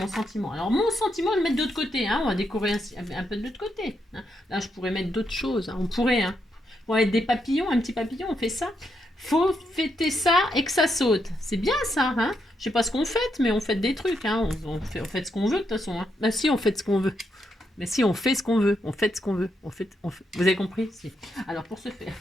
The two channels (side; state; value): both; normal; correlation 0.80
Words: sentiment. Alors, mon sentiment, je vais le mettre de l'autre côté, hein. On va décorer un peu de l'autre côté. Hein. Là, je pourrais mettre d'autres choses. Hein. On pourrait, hein. On va mettre des papillons, un petit papillon, on fait ça. Faut fêter ça et que ça saute. C'est bien ça, hein? Je sais pas ce qu'on fait, mais on fait des trucs, hein. On fait ce qu'on veut de toute façon. Hein. Bah si, on fait ce qu'on veut. Mais si, on fait ce qu'on veut. On fait ce qu'on veut. Vous avez compris? Si. Alors, pour ce faire,